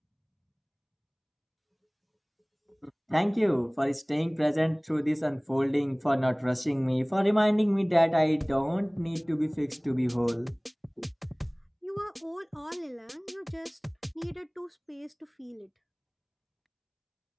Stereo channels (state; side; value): identical; both; correlation 1.00